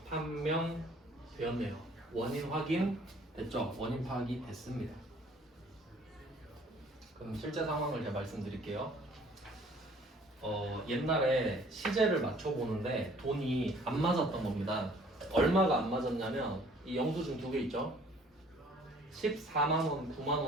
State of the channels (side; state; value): both; normal; correlation 0.56